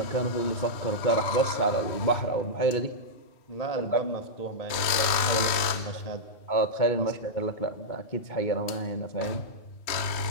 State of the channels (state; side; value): late; right; 3.1 ms